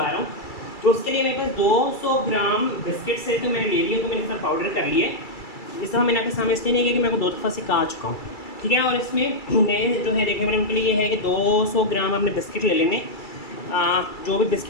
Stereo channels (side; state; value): right; late; 2.3 ms